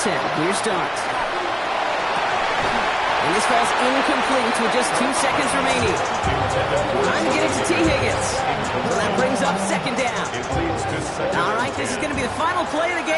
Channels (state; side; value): identical; both; correlation 1.00